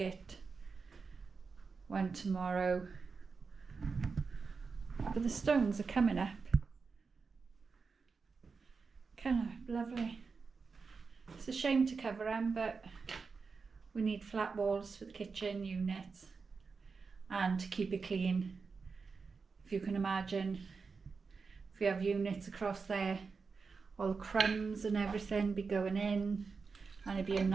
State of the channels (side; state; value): left; quieter; 4.9 dB